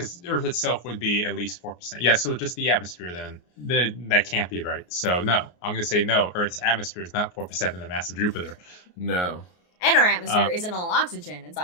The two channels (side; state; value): right; late; 24 ms